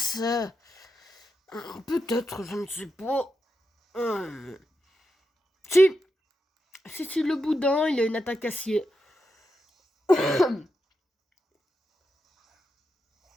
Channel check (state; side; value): normal; both; correlation 0.86